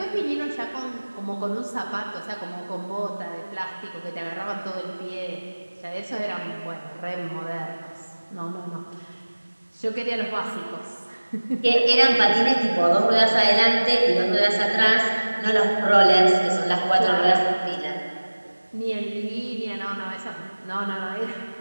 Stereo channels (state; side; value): inverted; both; correlation -1.00